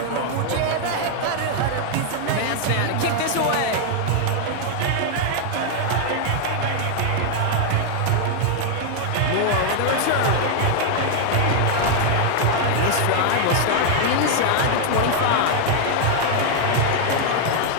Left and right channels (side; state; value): both; different; correlation 0.00